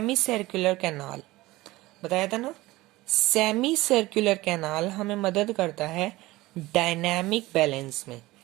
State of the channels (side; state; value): left; quieter; 19.0 dB